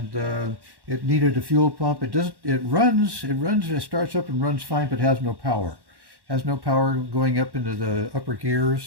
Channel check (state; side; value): late; left; 1.1 ms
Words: it needed a fuel pump. It starts up and runs fine, but has no power. Has no power going up into the upper